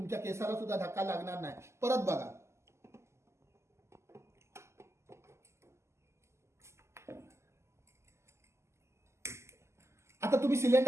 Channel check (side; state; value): left; late; 0.13 ms